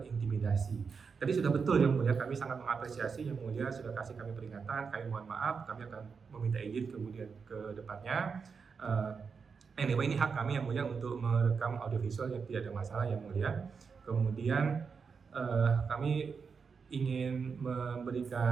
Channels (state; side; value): quieter; left; 5.6 dB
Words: Tadi sudah betul yang Mulia, kami sangat mengapresiasi yang Mulia sudah kasih kami peringatan. Kami mohon maaf, kami akan meminta izin kemudian ke depannya. Anyway, ini hak kami yang Mulia untuk merekam audiovisual yang tidak ada masalah yang Mulia. Kemudian kami ingin